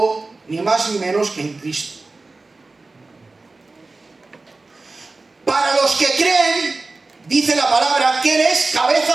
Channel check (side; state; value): left; quieter; 3.5 dB